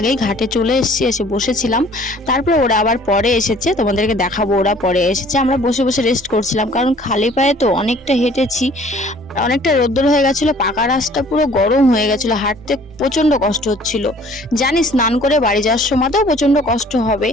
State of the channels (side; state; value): both; normal; correlation 0.53